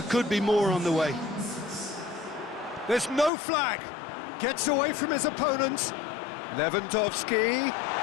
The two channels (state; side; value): drops out; right; at 3.3 s